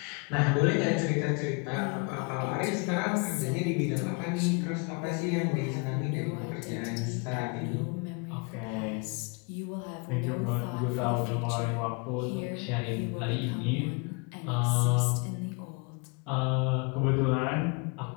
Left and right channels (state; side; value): quieter; right; 32.4 dB